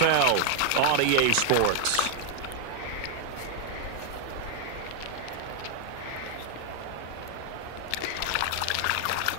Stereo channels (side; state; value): both; different; correlation 0.00